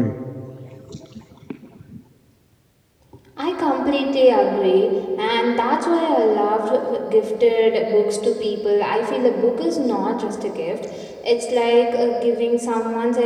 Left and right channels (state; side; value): identical; both; correlation 1.00